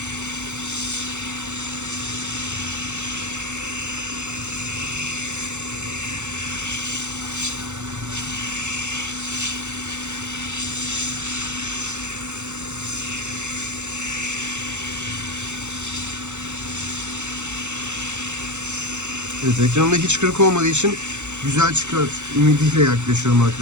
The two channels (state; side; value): late; left; 0.83 ms